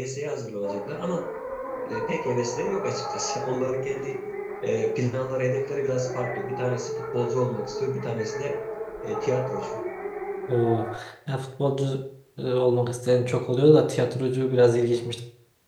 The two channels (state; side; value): identical; both; correlation 1.00